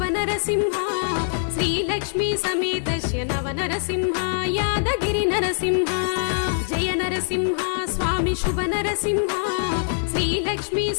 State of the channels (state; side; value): silent; right; 63 dB below the other